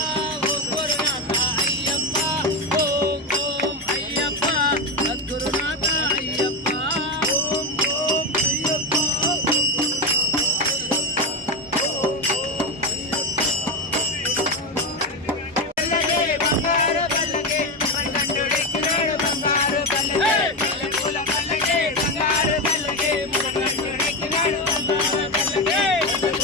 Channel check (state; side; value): normal; both; correlation 0.13